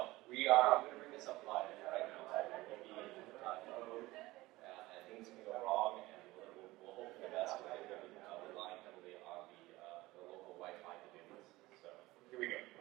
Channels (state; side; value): quieter; left; 19.2 dB